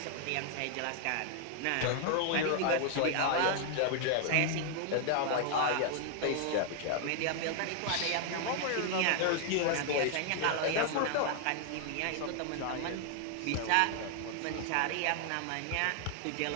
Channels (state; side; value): different; both; correlation 0.00